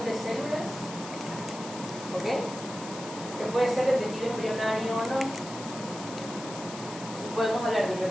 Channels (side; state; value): left; noise; hiss, 13 dB below the sound